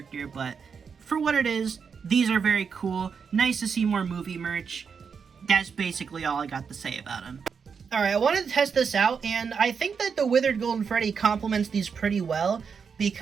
But for what it is, these are very cool. Nice to see more movie merch. That's basically all I got to say about them. Alright, I wanted to test this out, and I think that the Withered Golden Freddy complements these pretty well,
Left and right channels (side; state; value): left; quieter; 6.1 dB